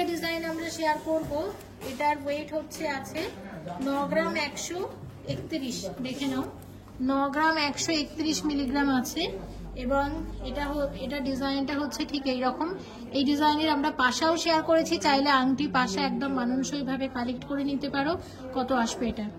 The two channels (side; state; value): both; identical; correlation 1.00